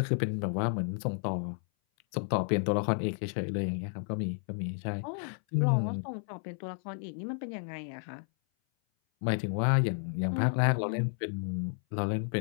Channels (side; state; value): right; silent; 57 dB below the other